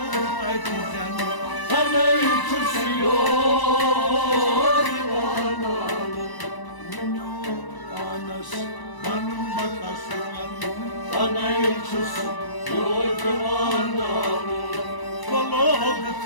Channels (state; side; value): late; right; 1.0 ms